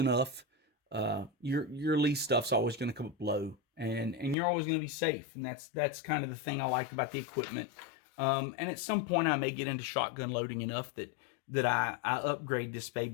your Lee stuff's always going to come up low, and you're always going to be safe. And that's kind of the thing I like about the equipment. And at some point I may get into shotgun loading enough that I upgrade this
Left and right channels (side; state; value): right; drops out; at 4.4 s